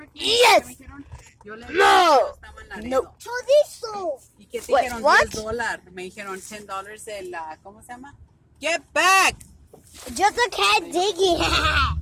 Yes! No! No. ¿Y qué te Wait, dijeron? what? $10. Me dijeron $10 el, ¿cómo se llama? Get back! Just a cat digging.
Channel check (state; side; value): identical; both; correlation 1.00